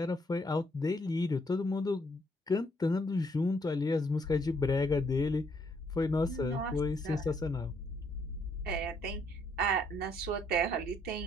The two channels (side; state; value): both; normal; correlation 0.70